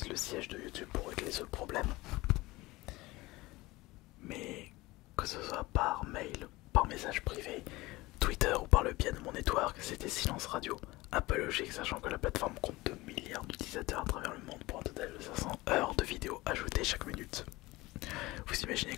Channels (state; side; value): quieter; right; 20.3 dB